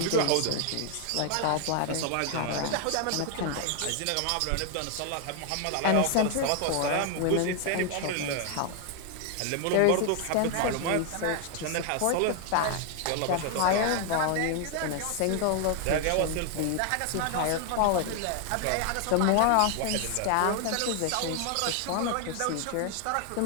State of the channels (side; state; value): both; different; correlation 0.00